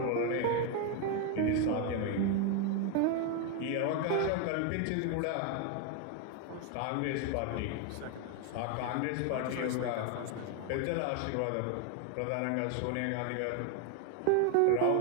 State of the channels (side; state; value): both; different; correlation 0.01